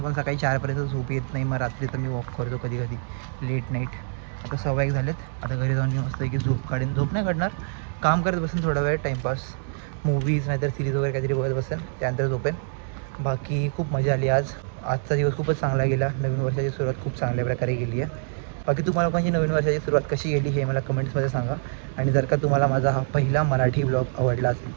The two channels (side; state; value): left; silent; digital silence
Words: पण सकाळी 4पर्यंत झोप येत नाही, मग रात्री तर मी वॉक करतो कधी कधी लेट नाईट. आता 1:15 झालेत. आता घरी जाऊन मी मस्तपैकी झोप काढेन. झोप नाही काढणार, काम करत बसेन थोडा वेळ, टाईमपास, मूवीज नाहीतर सिरीज वगैरे काहीतरी बघत बसेन, त्यानंतर झोपेन. बाकी खूप मजा आली आज. आजचा दिवस खूपच चांगला गेला. नवीन वर्षाची सुरुवात खूप चांगल्या प्रकारे गेली आहे. बाकी तुम्हाला लोकांची नवीन वर्षाची सुरुवात कशी गेली हे मला कमेंट्समध्ये सांगा. आणि जर का तुम्हाला माझा हा पहिला मराठी ब्लॉग आवडला असेल